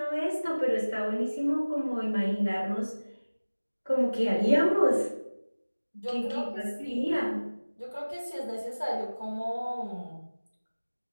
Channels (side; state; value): both; inverted; correlation -1.00